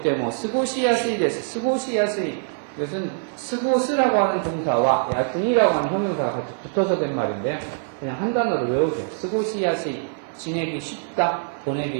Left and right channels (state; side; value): silent; left; digital silence